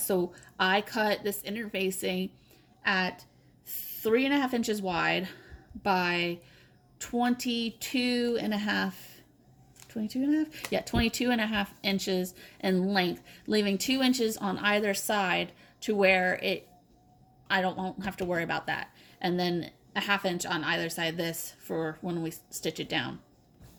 I cut this interfacing at 3.5 inches wide by 22 and a half inches in length, leaving 2 inches on either side to where I won't have to worry about that. And then a 1/2 inch on either side of this for when we stitch it down.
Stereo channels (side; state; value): both; identical; correlation 1.00